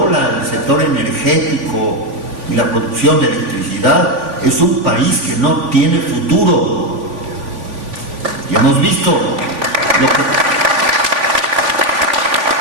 el sector energético y la producción de electricidad es un país que no tiene futuro. Y hemos visto lo que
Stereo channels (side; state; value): left; late; 3.5 ms